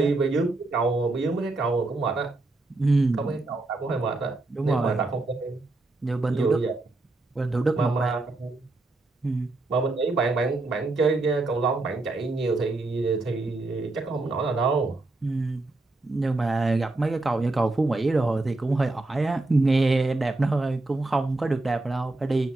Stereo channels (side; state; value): left; quieter; 3.1 dB